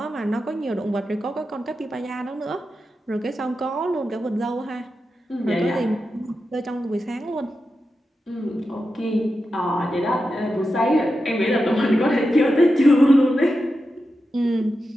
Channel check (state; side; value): normal; both; correlation 0.90